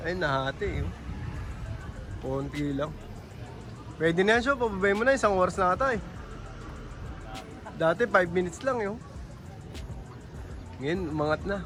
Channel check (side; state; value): both; identical; correlation 1.00